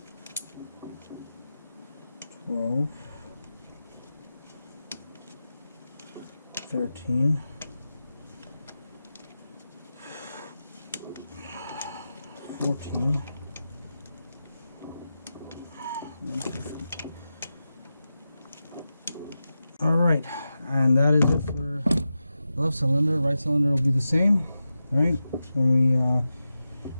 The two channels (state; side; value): inverted; both; correlation -0.92